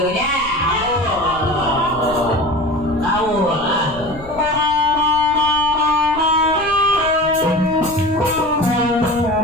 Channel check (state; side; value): noise; left; rumble, 17 dB below the sound